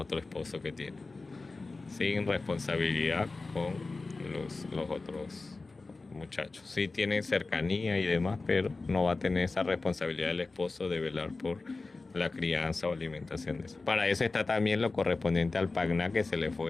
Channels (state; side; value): quieter; right; 3.6 dB